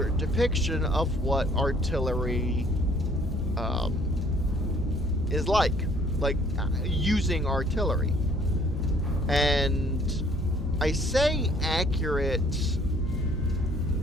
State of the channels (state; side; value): normal; both; correlation 0.59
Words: depiction of what artillery is like using artillery. And I say accurate.